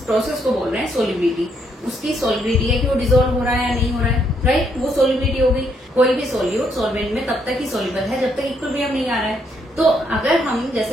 प्रोसेस को बोल रहे हैं सोल्युबिलिटी। उसकी सोल्युबिलिटी है कि वो डिसॉल्व हो रहा है या नहीं हो रहा है, राइट, वो सोल्युबिलिटी हो गई। कोई भी सोल्यूट सोलवेंट में तब तक ही सोल्यूबल है जब तक इक्विलिब्रियम नहीं आ रहा है। तो अगर हम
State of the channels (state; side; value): normal; both; correlation 0.73